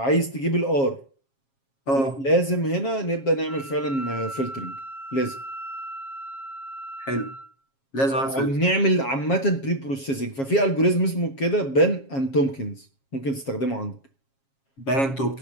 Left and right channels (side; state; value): right; late; 7.4 ms